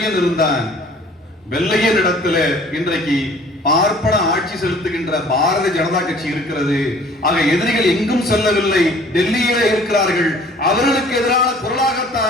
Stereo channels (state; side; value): normal; both; correlation 0.52